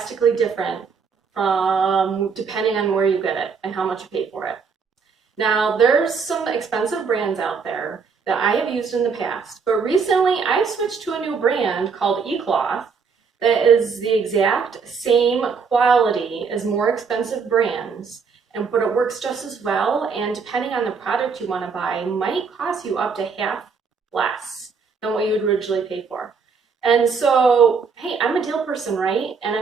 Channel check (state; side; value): quieter; left; 5.5 dB